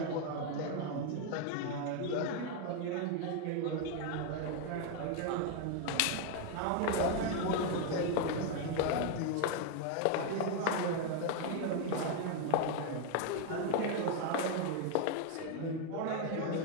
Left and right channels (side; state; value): both; different; correlation 0.01